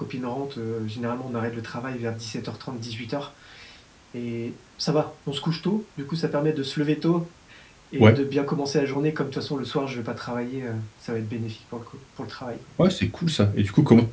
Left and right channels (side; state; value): both; identical; correlation 1.00